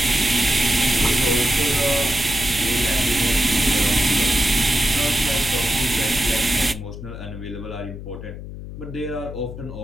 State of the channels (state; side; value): noise; left; hum, 11 dB below the sound